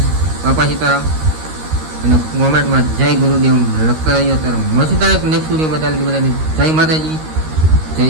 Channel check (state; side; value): late; left; 13 ms